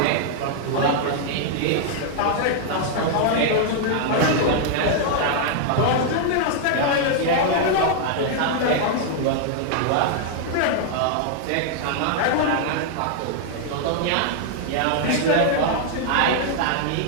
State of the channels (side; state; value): both; different; correlation 0.00